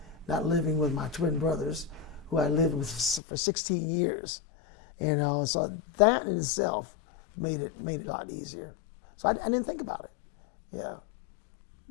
not living with my twin brothers, who I lived with for 16 years. So that in itself made it a lot easier. So I didn't think about it. Yeah.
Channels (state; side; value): drops out; right; at 3.2 s